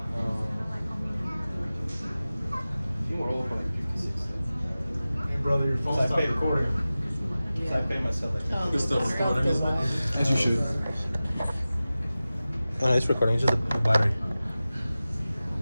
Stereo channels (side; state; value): both; inverted; correlation -0.96